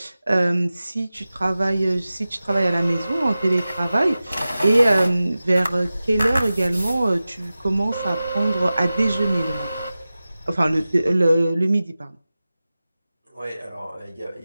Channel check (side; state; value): both; inverted; correlation -0.96